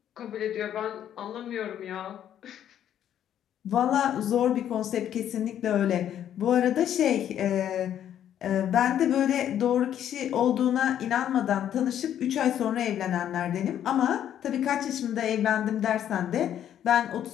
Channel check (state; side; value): quieter; right; 10.4 dB